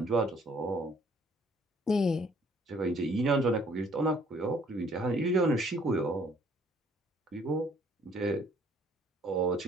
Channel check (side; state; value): both; normal; correlation 0.61